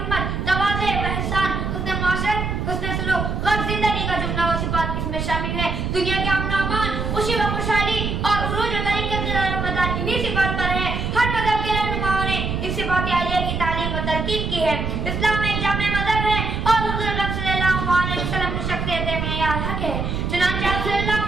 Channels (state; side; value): noise; right; rumble, 2 dB below the sound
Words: तवाज़े व ihसान, हुस्न मुआशरत, हुस्न सुलूक, गम जिंदगी का जुमला व सिफात इसमें शामिल है। दुनिया के अमन व अमान, खुशी व खुशहाली और उरूज व तरीक़त मदार इन्हीं सिफात पर है। हर मज़हब के रहनुमाओं ने इस सिफात आलिया की तालीम व तलकीन की है। इस्लाम एक जामे मज़हब है और हुज़ूर अकरम सल्लल्लाहु अलैहि वसल्लम की शख्सियत मेयार हक है। चुनांचे आप